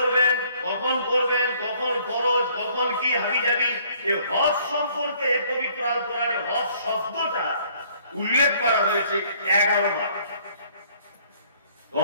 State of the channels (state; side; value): inverted; both; correlation -0.61